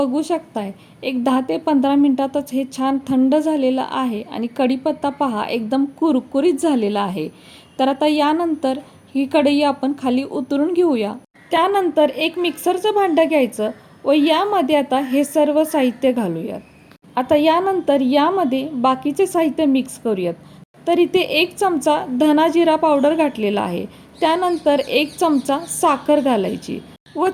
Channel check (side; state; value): both; identical; correlation 1.00